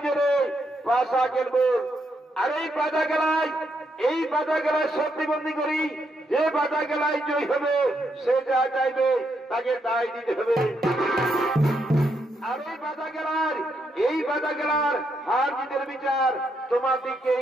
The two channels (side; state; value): both; normal; correlation 0.78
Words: পাশা খেলবো। আর এই পাতা খেলায় শক্তিবন্দী করি, যে পাতা খেলায় জয় হবে সে যা চাইবে তাকে তাই দিতে হবে। আর এই পাতা খেলার হার জিতের বিচার তোমাদেরকেই